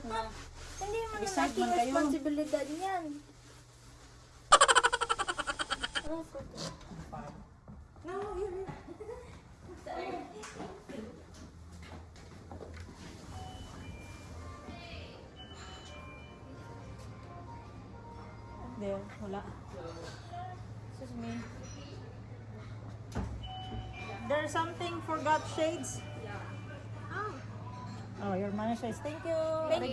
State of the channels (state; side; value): identical; both; correlation 1.00